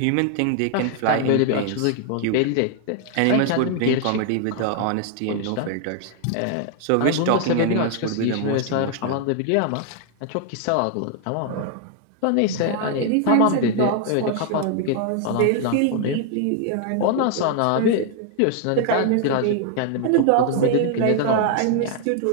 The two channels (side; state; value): both; different; correlation 0.00